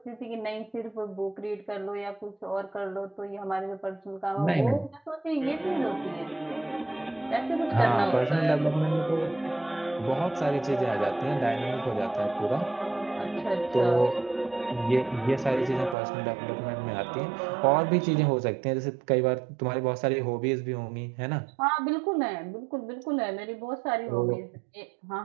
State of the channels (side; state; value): left; drops out; at 16.0 s